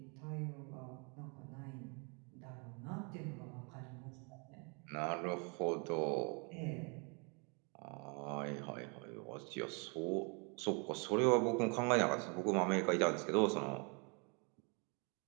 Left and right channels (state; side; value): quieter; left; 34.0 dB